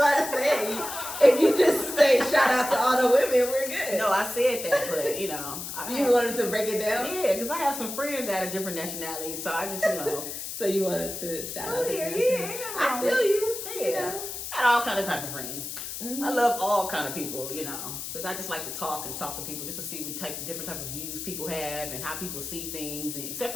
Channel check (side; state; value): left; noise; hiss, 7 dB below the sound